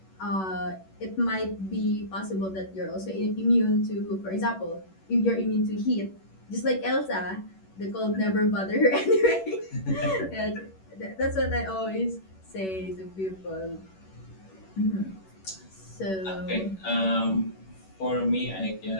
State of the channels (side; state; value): right; late; 11 ms